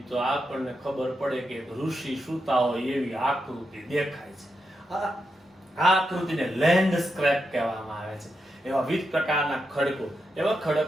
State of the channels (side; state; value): both; normal; correlation 0.85